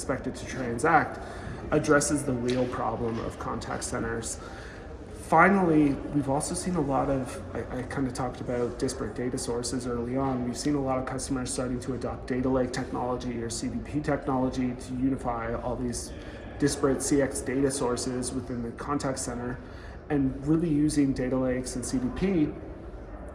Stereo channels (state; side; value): identical; both; correlation 1.00